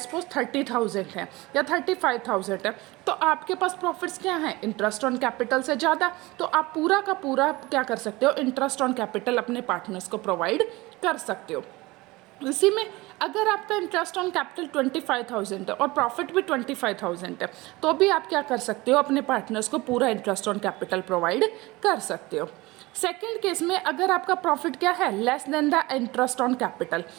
सपोज 30,000 है या 35,000 है। तो आपके पास प्रॉफिट्स क्या है, इंटरेस्ट ऑन कैपिटल से ज़्यादा। तो आप पूरा का पूरा क्या कर सकते हो, इंटरेस्ट ऑन कैपिटल अपने पार्टनर्स को प्रोवाइड कर सकते हो। इसी में अगर आपका इंटरेस्ट ऑन कैपिटल 25,000 है और प्रॉफिट भी 25,000 है, तो भी आप क्या कर सकते हो, अपने पार्टनर्स को पूरा इंटरेस्ट ऑन कैपिटल प्रोवाइड कर सकते हो। सेकेंड केस में अगर आपका प्रॉफिट क्या है, less than the interest on capital,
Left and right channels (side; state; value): left; quieter; 21.4 dB